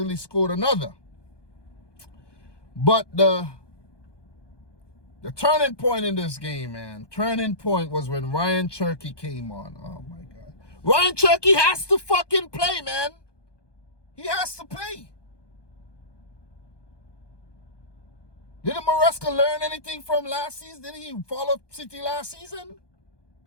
scored another. But the turning point in this game, man, was when Ryan Cherky came on. Oh, my God. Ryan Cherky has to fucking play, man. He has to play. Didn't Maresca learn anything from last season? Didn't he follow City last season?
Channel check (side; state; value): right; late; 1.2 ms